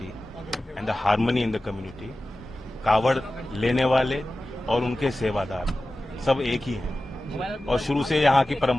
and the harmony in the community. कावड़ लेने वाले और उनके सेवादार सब एक ही हैं और शुरू से यहाँ की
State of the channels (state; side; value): normal; both; correlation 0.95